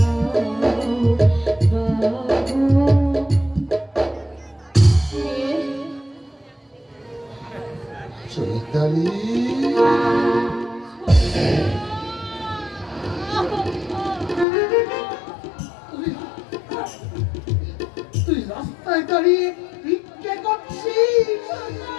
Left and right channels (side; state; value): right; drops out; at 14.5 s